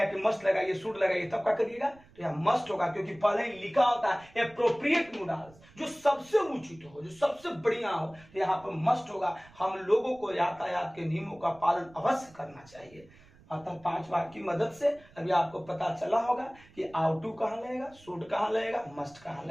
कि मस्ट लगाइए शुड लगाइए, तब क्या करिएगा, तो यहां मस्ट होगा, क्योंकि पहले ही लिखा होता है एप्रोप्रिएट मोडाल्स, जो सबसे उचित हो, जो सबसे बढ़िया हो, तो यहाँ पर मस्ट होगा। हम लोगों को यातायात के नियमों का पालन अवश्य करना चाहिए। अतः 5 वाक्य की मदद से अभी आपको पता चला होगा कि आउट टू कहां लगेगा, शुड कहां लगेगा, मस्ट कहां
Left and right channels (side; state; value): right; noise; rumble, 25 dB below the sound